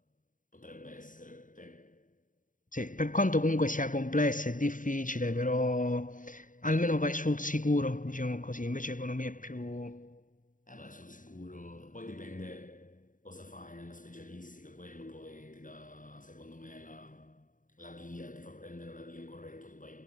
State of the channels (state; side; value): late; right; 0.38 ms